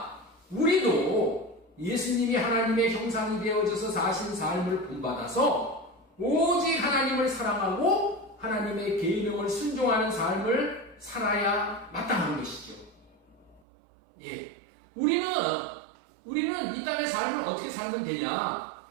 우리도 예수님이 하나님의 형상이 되어져서 사신 삶을 본받아서 오직 하나님을 사랑하고 하나님의 계명을 순종하는 삶을 살아야 마땅한 것이죠. 예. 우리는 이 땅의 삶을 어떻게 살면 되냐?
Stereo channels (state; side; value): drops out; left; at 13.6 s